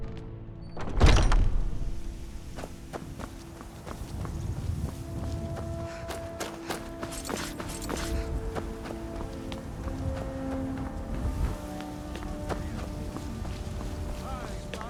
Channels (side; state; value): both; identical; correlation 1.00